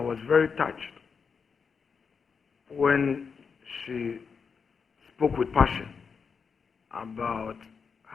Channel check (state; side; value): quieter; right; 5.8 dB